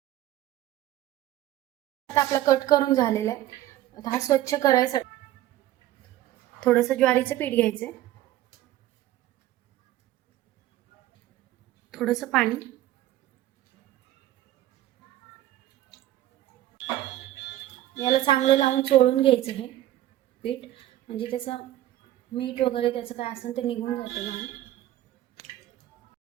आता आपला कट करून झालेला आहे. आता हा स्वच्छ करायसाठी थोडंसं ज्वारीचं पीठ घ्यायचं, थोडंसं पाणी, याला चांगलं लावून चोळून घ्यायचं हे पीठ, म्हणजे त्याचं मीठ वगैरे त्याचं काय असेल ते निघून जातं घाण.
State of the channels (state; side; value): quieter; left; 14.2 dB